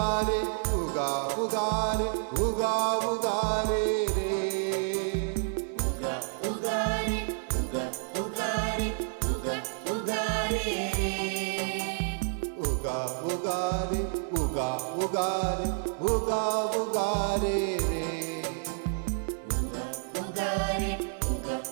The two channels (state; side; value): silent; left; 58 dB below the other